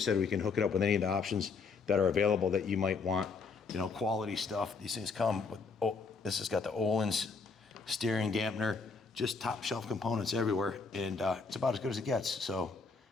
we can hook it up with any of the options that are available that you might want. Quality stuff. These things come with. This has got the Öhlins steering dampener, just top shelf components everywhere, and it's about as good as it gets. So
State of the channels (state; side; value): quieter; right; 4.7 dB